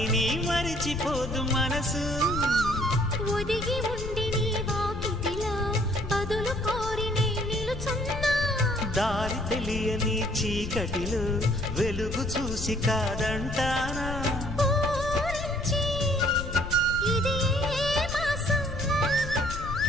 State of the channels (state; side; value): noise; left; rumble, 6 dB below the sound